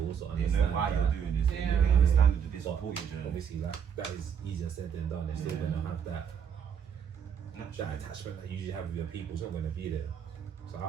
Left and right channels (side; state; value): left; quieter; 7.7 dB